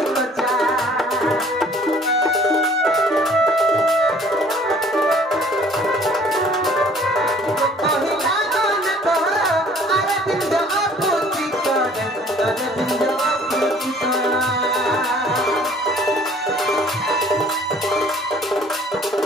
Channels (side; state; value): both; normal; correlation 0.54